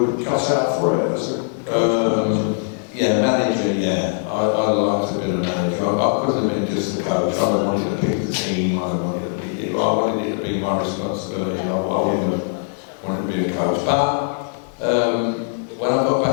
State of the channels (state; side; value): silent; right; digital silence